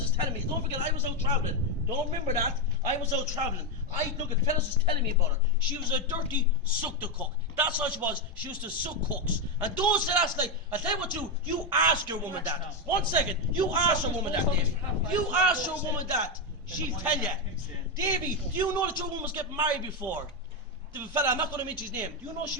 was telling me, don't forget I was out travelling. Don't remember that. I was out travelling. Look at fellas was telling me about her. She was a dirty suck the cook. That's all she was. She used to suck cooks. And those that ask, like, I'll tell you what you ask your woman that. 1 second. You ask your woman that, Davey. You ask your woman that. She'll tell you. Davey, do you know that your woman was getting married before? The fella, I'm not going to mention his name. Do you know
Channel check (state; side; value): normal; both; correlation 0.06